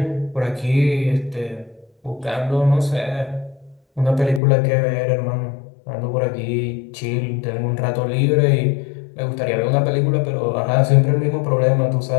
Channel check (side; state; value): right; drops out; at 4.4 s